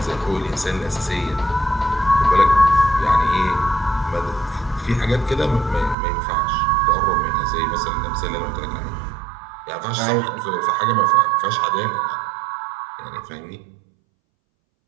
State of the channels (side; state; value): left; drops out; at 6.0 s